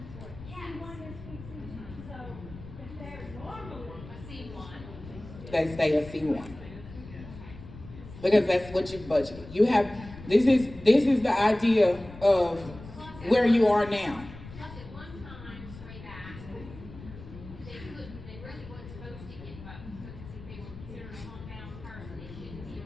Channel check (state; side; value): noise; left; rumble, 15 dB below the sound